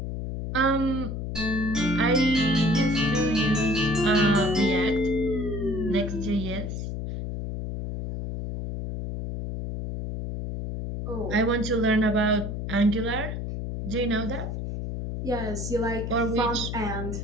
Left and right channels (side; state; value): left; noise; hum, 5 dB below the sound